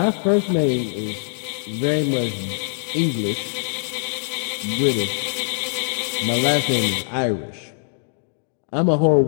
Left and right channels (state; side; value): silent; right; digital silence